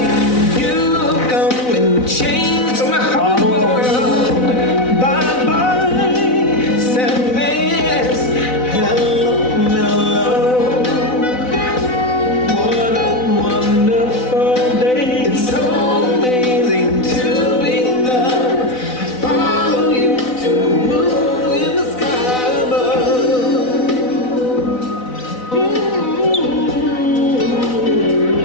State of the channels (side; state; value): right; late; 4.0 ms